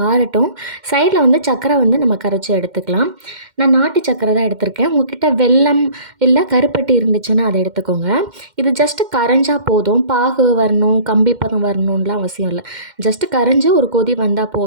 ஆறட்டும். சைடில் சர்க்கரை நம்ம கரைச்சி எடுத்துக்கலாம். நான் நாட்டு சர்க்கரை தான் எடுத்திருக்கேன். உங்ககிட்ட வெல்லம் இல்லை கருப்பட்டி இருந்துச்சுன்னா அதை எடுத்துக்கோங்க. இது ஜஸ்ட்டு கரைஞ்சா போதும். பாகு வரணும், கம்பி பதம் வரணும்லாம் அவசியம் இல்லை. ஜஸ்ட்டு கரைஞ்சி ஒரு கொதி வந்தால்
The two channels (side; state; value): left; late; 2.1 ms